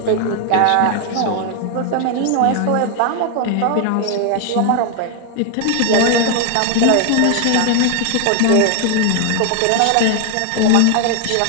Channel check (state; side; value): different; both; correlation 0.00